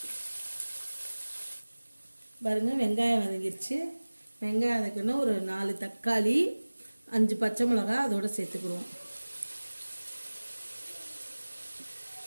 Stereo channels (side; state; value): both; inverted; correlation -1.00